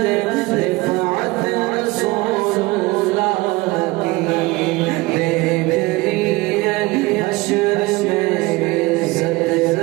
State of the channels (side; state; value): left; quieter; 21.8 dB